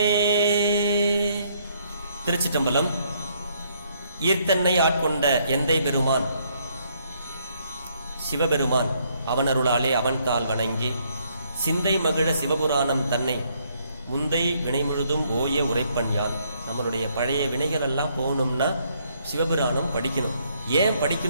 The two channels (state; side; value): inverted; both; correlation -0.69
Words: திருச்சிற்றம்பலம். ஈர்த்தன்னை ஆட்கொண்ட எந்தை பெருமான் சிவபெருமான் அவனருளாலே அவன் தாள் வணங்கி சிந்தை மகிழ சிவபுராணம் தன்னை முந்தை வினை முழுதும் ஓய உரைப்பன் யான். நம்மளுடைய பழைய வினைகள் எல்லாம் போகணும்னா சிவபுராணம் படிக்கணும். ஏன்